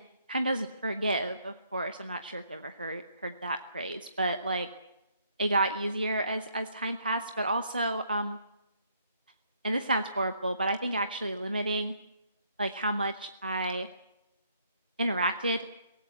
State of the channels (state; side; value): inverted; both; correlation -0.69